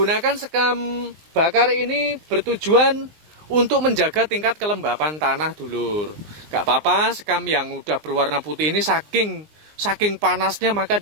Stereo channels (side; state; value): left; late; 19 ms